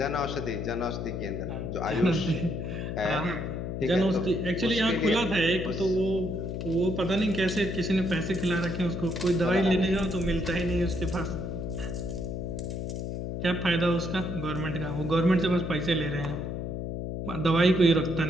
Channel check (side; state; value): left; noise; hum, 4 dB below the sound